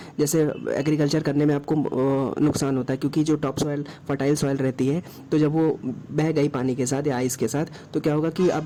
जैसे एग्रीकल्चर करने में आपको नुकसान होता है, क्योंकि जो टॉप सॉइल फर्टाइल सॉइल रहती है, तो जब वो बह गई पानी के साथ या आइस के साथ, तो क्या होगा कि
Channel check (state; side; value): identical; both; correlation 1.00